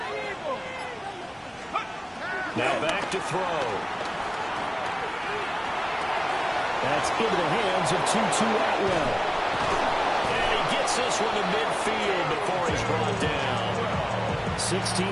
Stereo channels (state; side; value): identical; both; correlation 1.00